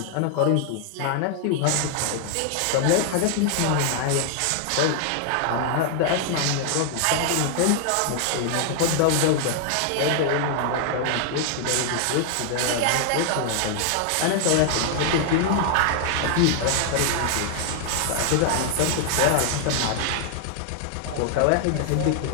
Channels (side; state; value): both; different; correlation 0.00